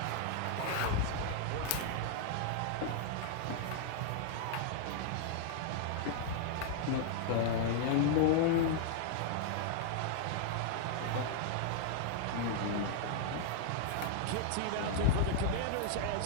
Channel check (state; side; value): different; both; correlation -0.01